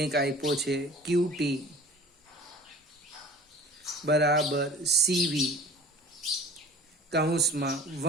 આપ્યો છે QT બરાબર CV કૌંસમાં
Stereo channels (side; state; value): both; normal; correlation 0.44